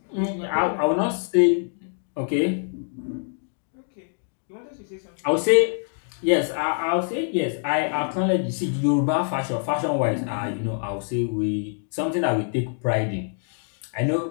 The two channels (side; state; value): right; silent; digital silence